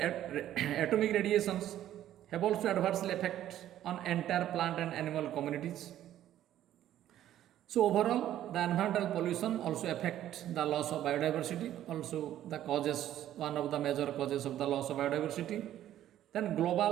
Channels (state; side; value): quieter; left; 12.2 dB